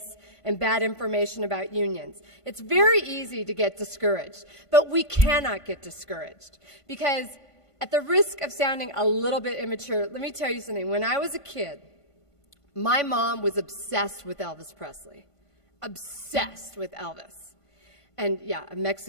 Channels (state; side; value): late; right; 1.5 ms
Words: and bad information about unions. It's very easy to get discouraged, but we cannot get discouraged, because at the risk of sounding a little bit immature, let me tell you something. When I was a kid, my mom was obsessed with Elvis Presley. Obsessed with Elvis. And yeah, a